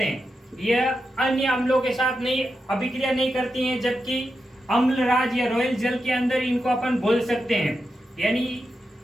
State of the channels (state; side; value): normal; both; correlation 0.88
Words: हैं। यह अन्य अम्लों के साथ नहीं अभिक्रिया नहीं करती हैं, जबकि अम्लराज या रॉयल जल के अंदर इनको अपन बोल सकते हैं। यानी